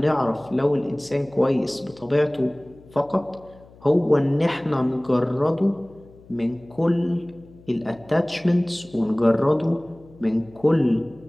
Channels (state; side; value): noise; left; hum, 24 dB below the sound